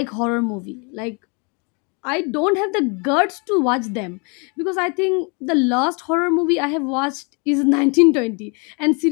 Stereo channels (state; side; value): quieter; right; 33.3 dB